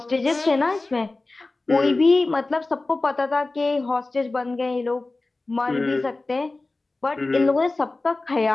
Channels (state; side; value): quieter; right; 3.2 dB